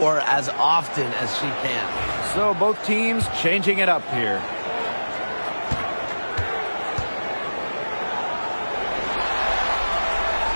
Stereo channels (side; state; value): both; inverted; correlation -1.00